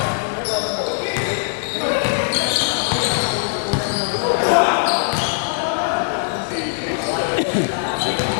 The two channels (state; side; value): silent; right; 66 dB below the other